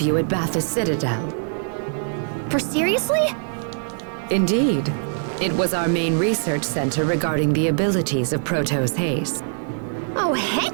you at Bathurst Citadel. For seriously? Indeed. It was our main research center regarding the abilities of Protos haste. Oh,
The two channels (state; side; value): silent; left; 64 dB below the other